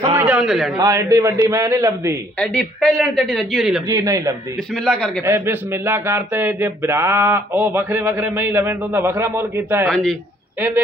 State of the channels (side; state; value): both; normal; correlation 0.63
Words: ਉਹਨੇ ਲੈਣੀ। ਹਾਂ, ਐਡੀ ਵੱਡੀ ਮੈਂ ਨਹੀਂ ਲੱਭਦੀ, ਐਡੀ ਪਹਿਲਣ ਤੇ ਐਡੀ ਰੱਜੀ ਹੋਈ ਨਹੀਂ ਲੱਭਦੀ। ਜੀ ਨਹੀਂ ਲੱਭਦੀ। ਬਿਸਮਿਲ੍ਲਾ ਕਰਕੇ ਇਹ ਬਿਸਮਿਲ੍ਲਾ ਕਰਤੇ ਜੇ ਭਰਾ ਉਹ ਵੱਖਰੇ ਵੱਖਰੇ ਮੈਂ ਹੀ ਲਵੇਂ ਤਾਂ ਉਹਦਾ ਵੱਖਰਾ ਮੁੱਲ ਕੀਤਾ ਹੈ। ਹਾਂਜੀ,